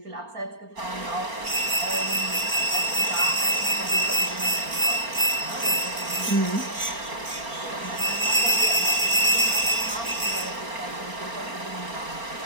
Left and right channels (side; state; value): left; late; 4.4 ms